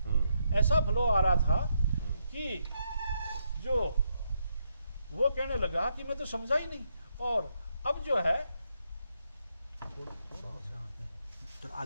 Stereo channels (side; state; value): both; inverted; correlation -0.79